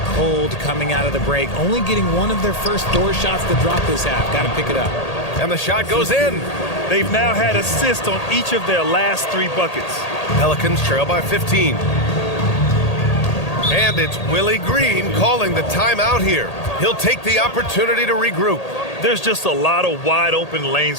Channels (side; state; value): right; late; 1.8 ms